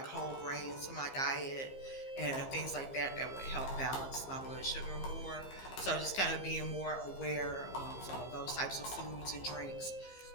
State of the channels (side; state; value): right; late; 15 ms